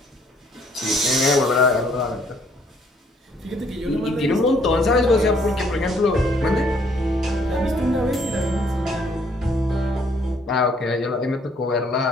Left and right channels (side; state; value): both; normal; correlation 0.65